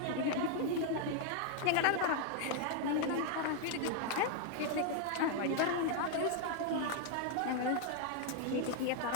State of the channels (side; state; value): both; different; correlation 0.00